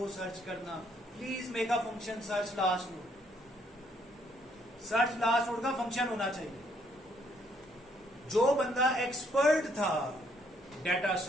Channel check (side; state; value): both; normal; correlation 0.68